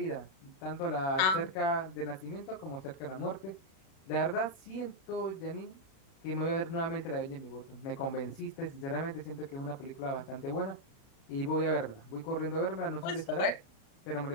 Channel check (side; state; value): right; late; 37 ms